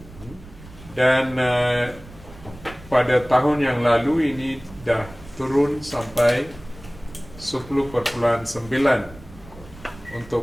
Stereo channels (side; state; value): right; noise; rumble, 19 dB below the sound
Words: dan pada tahun yang lalu ini dah turun sampai 10.9